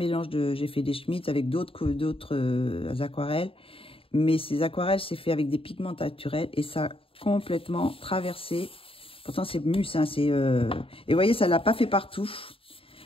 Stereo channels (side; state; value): right; late; 0.27 ms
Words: j'ai fait des Schmitt avec d'autres aquarelles. Mais ces aquarelles, c'est fait avec des pigments naturels et ça a complètement traversé. Pourtant, c'est Mus. Hein, et vous voyez, ça ne l'a pas fait partout.